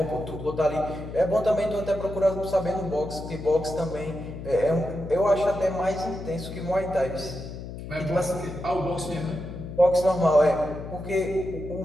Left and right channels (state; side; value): noise; left; hum, 10 dB below the sound